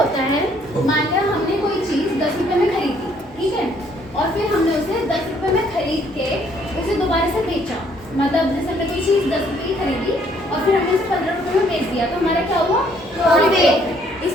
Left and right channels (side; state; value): both; normal; correlation 0.65